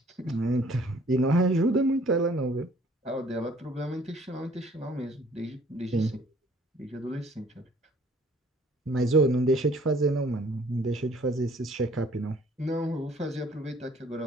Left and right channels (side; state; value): both; normal; correlation 0.57